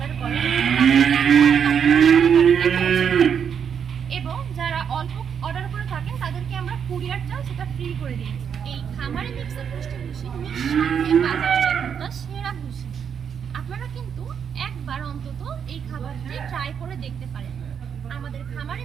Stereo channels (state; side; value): quieter; left; 7.6 dB